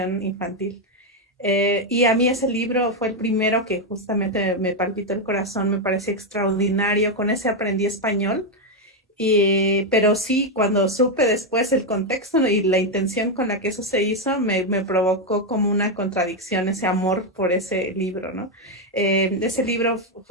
infantil. Y a mí ese libro fue el primero que justamente me palpitó el corazón, me pareció extraordinario, con ese aprendí español. Pero sí, cuando supe después el contexto y la intención con la que eso se hizo, me provocó como una contradicción ese amor por ese libro, ¿no? Ese libro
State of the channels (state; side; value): normal; both; correlation 0.04